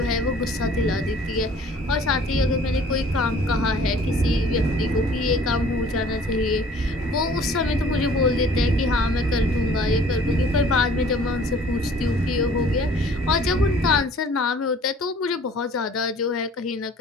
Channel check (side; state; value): both; normal; correlation 0.52